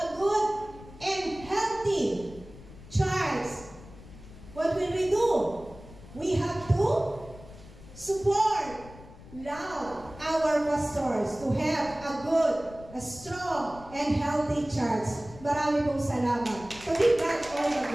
pastors to have a good, a strong, and healthy church. Marami pong salamat. To be God all the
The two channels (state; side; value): noise; left; rumble, 18 dB below the sound